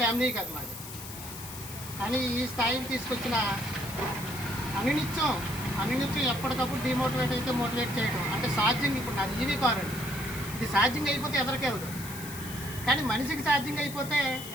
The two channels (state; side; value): noise; left; hiss, 11 dB below the sound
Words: ఫ్యామిలీ కాదు మాది. కానీ ఈ స్థాయికి తీసుకొచ్చిన అనునిత్యం ఎప్పటికప్పుడు డిమోటివేట్ అయితే మోటివేట్ చేయడం అంటే ఛార్జింగ్. ఇప్పుడు నాది ఈవీ కార్ అండి. ఇది ఛార్జింగ్ అయిపోతే ఎదరికెళ్ళదు, కానీ మనిషికి ఛార్జింగ్ అయిపోతే